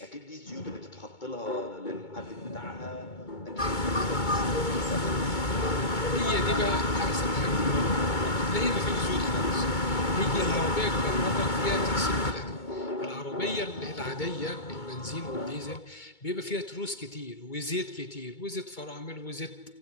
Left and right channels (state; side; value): late; right; 2.2 ms